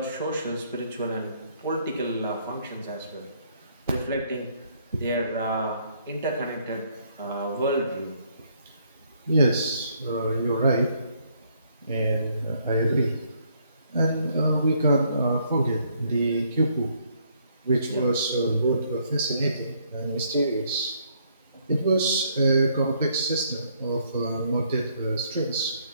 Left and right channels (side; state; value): both; inverted; correlation -0.68